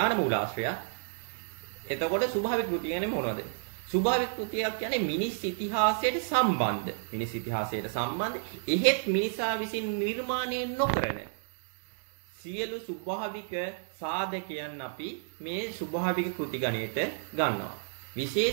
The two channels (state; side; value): silent; left; digital silence